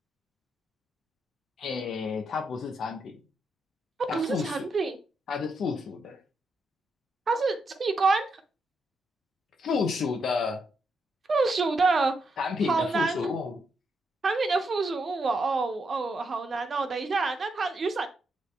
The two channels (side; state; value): both; normal; correlation 0.80